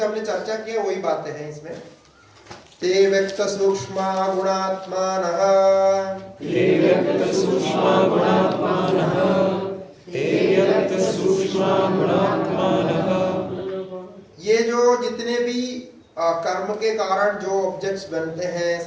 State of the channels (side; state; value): both; identical; correlation 1.00